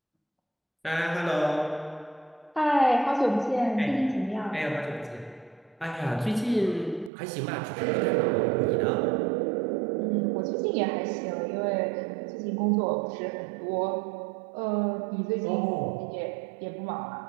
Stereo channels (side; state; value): left; drops out; at 7.1 s